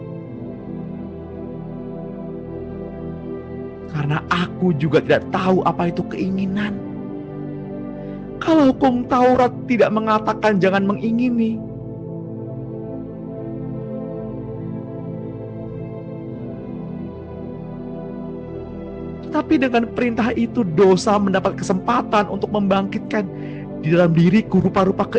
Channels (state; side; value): identical; both; correlation 1.00